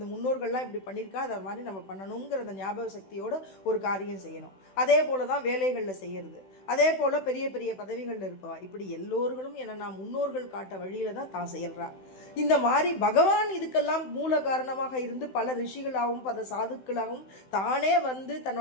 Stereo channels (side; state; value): right; late; 16 ms